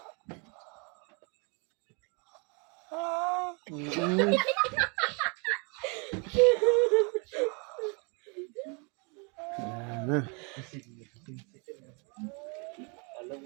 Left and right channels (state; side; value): quieter; left; 33.7 dB